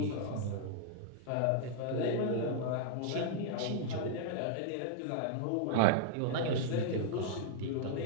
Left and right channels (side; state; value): both; different; correlation -0.01